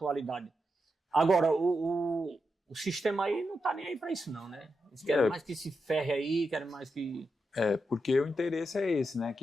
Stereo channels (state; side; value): normal; both; correlation 0.87